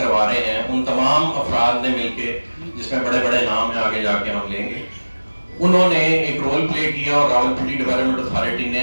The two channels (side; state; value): both; inverted; correlation -1.00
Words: رہے ہیں, ان تمام افراد نے مل کے جس میں بڑے بڑے نام ہیں آگے جا کے ہم لیں گے, انہوں نے ایک رول پلے کیا اور راولپنڈی ڈیولپمنٹ اتھارٹی